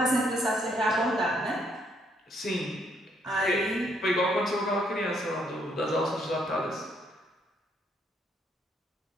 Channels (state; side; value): normal; both; correlation 0.71